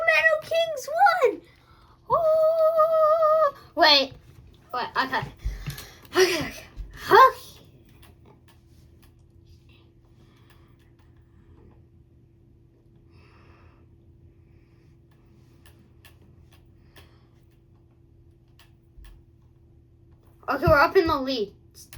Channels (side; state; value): both; identical; correlation 1.00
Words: Kings won! Oh! Wait. Okay. Okay, we're up in the lead.